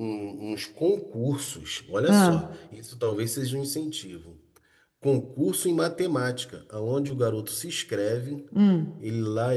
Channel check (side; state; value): both; identical; correlation 1.00